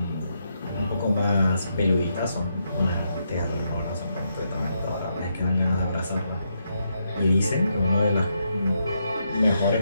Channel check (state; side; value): inverted; both; correlation -0.80